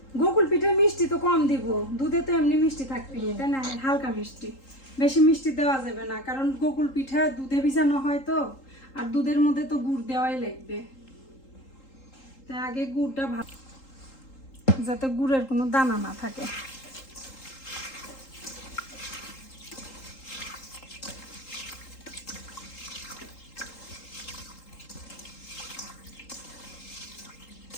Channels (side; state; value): right; late; 3.8 ms